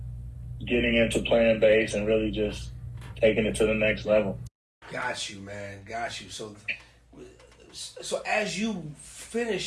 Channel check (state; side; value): identical; both; correlation 1.00